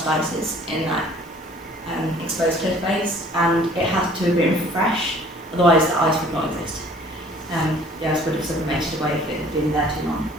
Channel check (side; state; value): both; normal; correlation 0.53